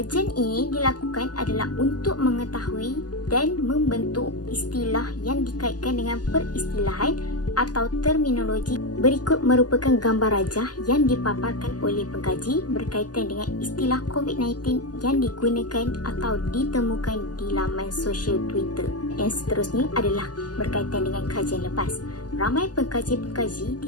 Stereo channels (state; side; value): late; right; 0.69 ms